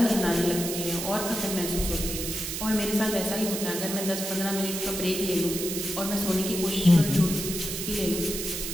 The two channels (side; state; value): right; noise; hiss, 4 dB below the sound